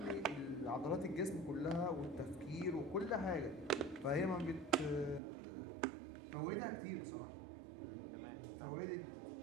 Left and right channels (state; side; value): drops out; left; at 5.2 s